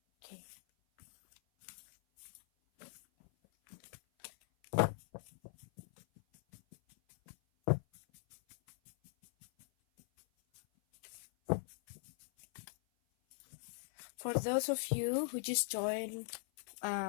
Okay. For those of you who just joined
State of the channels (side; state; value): right; silent; 50 dB below the other